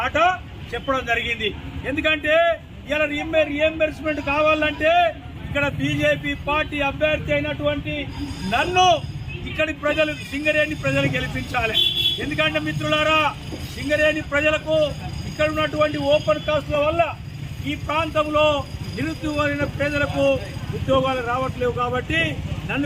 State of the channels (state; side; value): identical; both; correlation 1.00